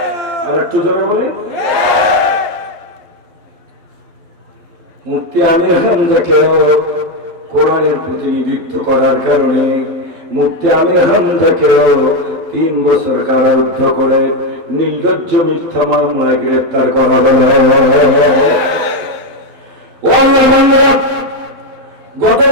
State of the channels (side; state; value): left; late; 11 ms